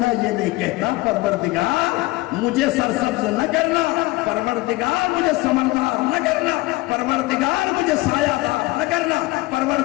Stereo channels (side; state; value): right; quieter; 20.4 dB